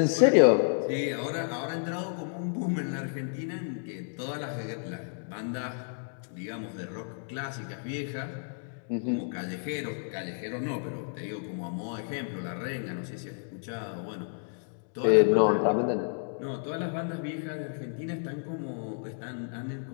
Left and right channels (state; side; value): silent; right; digital silence